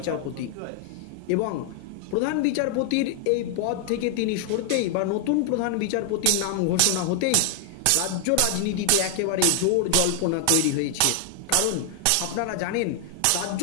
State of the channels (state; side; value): different; both; correlation 0.00